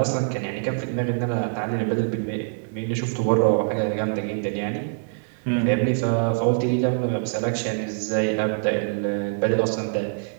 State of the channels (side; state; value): left; silent; 58 dB below the other